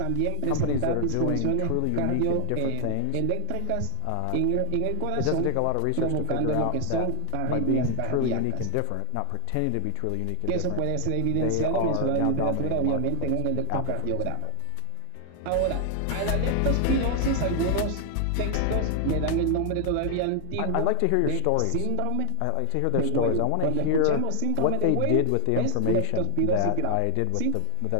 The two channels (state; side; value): different; both; correlation 0.00